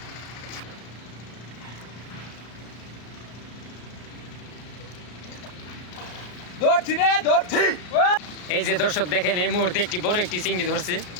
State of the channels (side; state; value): right; late; 33 ms